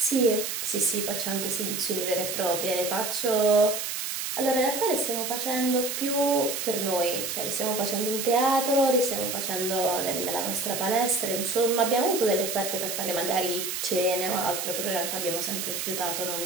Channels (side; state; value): right; noise; hiss, 3 dB below the sound